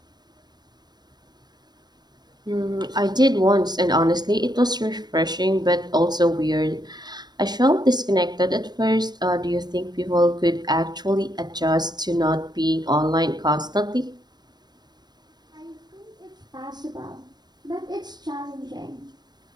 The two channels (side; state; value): left; late; 0.20 ms